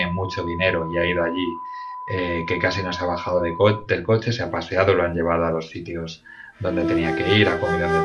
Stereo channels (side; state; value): both; identical; correlation 1.00